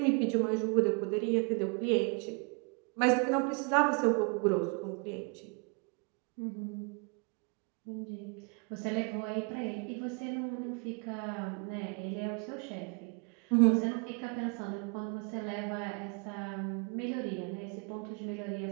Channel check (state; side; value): quieter; left; 34.0 dB